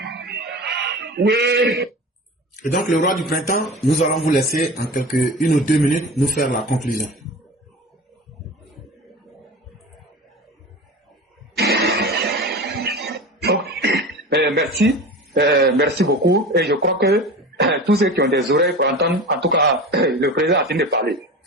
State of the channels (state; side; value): normal; both; correlation 0.33